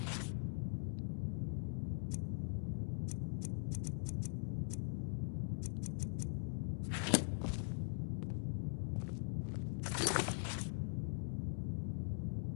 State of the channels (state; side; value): silent; right; digital silence